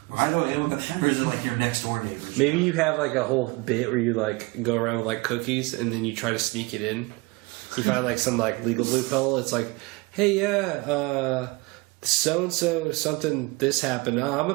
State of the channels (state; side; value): quieter; left; 24.9 dB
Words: By the way, I'm a pedophile. Or is it like your next door neighbor? Maybe you have like a whole bit where you like go around with like cookies and then you try to sneak it in. You find like some like legal loophole. It's like, hey, yeah, so and so something this happened. Oh, I'm a